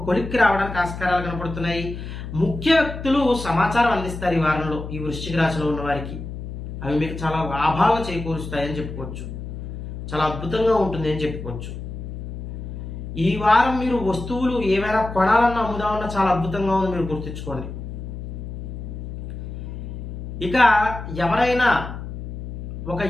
కొలిక్కి రావడానికి ఆస్కారాలు కనపడుతున్నాయి. ముఖ్య వ్యక్తులు సమాచారం అందిస్తారు ఈ వారంలో ఈ వృశ్చిక రాశిలో ఉన్న వారికి. అవి మీకు చాలా లాభాలు చేకూరుస్తాయని చెప్పుకోవచ్చు. చాలా అద్భుతంగా ఉంటుంది అని చెప్పుకోవచ్చు. ఈ వారం మీరు వస్తువులు ఏవైనా కొనాలన్నా అమ్ముదామన్నా చాలా అద్భుతంగా ఉంది, మీరు గుర్తుంచుకోండి. ఇక ఎవరైనా ఒక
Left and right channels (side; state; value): left; noise; hum, 8 dB below the sound